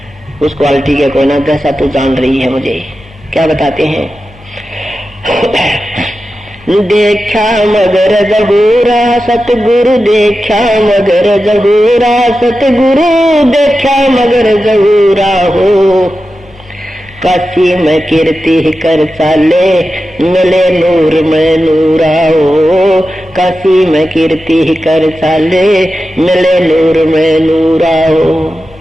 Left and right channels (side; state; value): both; normal; correlation 0.92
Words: उस क्वालिटी के कोई ना, जैसा तू जान रही है मुझे। क्या बताते हैं, देखा मगर जहूरा सतगुरु, देखा मगर जहूरा सतगुरु, देखा मगर जहूरा हो। काशी में कीर्ति कर चाले, मिले नूर में नूरा हो। काशी में कीर्ति कर चाले, मिले नूर में नूरा हो।